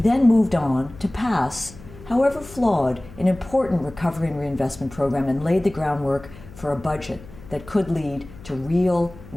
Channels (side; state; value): left; noise; hum, 18 dB below the sound